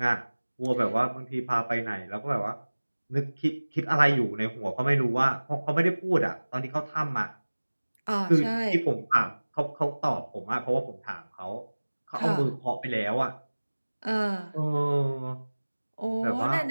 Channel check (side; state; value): both; inverted; correlation -1.00